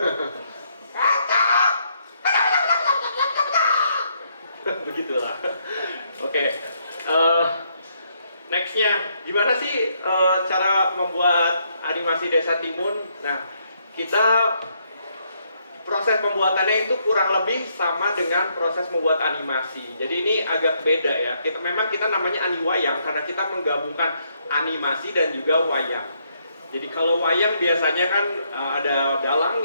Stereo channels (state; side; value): inverted; both; correlation -0.73